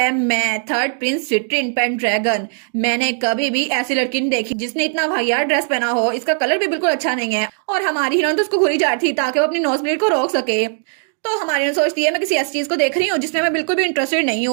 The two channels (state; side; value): silent; left; digital silence